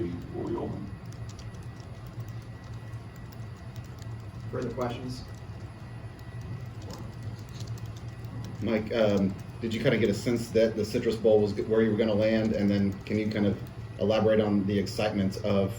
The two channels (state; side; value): identical; both; correlation 1.00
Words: open. Further questions? Mike, did you kind of get a sense that the Citrus Bowl was where you were going to land, and then can you kind of elaborate on the excitement of